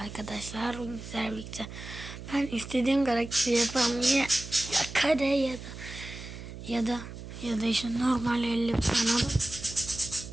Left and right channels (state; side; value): noise; right; hum, 12 dB below the sound